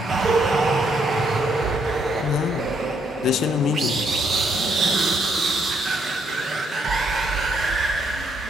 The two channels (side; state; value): both; normal; correlation 0.72